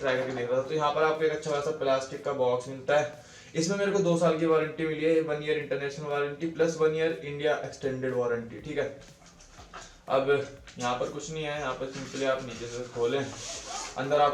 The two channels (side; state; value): both; identical; correlation 1.00